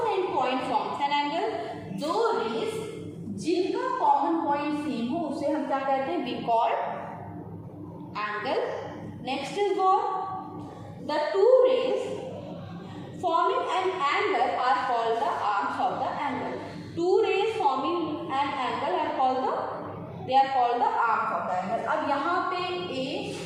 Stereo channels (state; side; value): identical; both; correlation 1.00